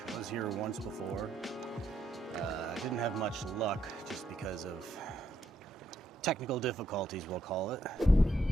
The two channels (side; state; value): both; normal; correlation 0.77